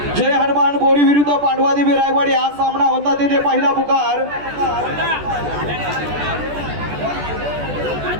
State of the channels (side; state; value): left; late; 14 ms